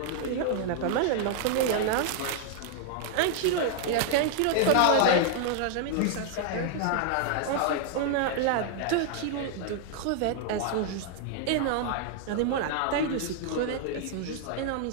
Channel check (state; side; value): different; both; correlation 0.00